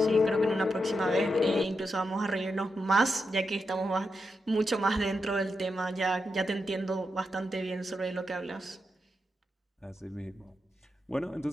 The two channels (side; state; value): both; normal; correlation 0.86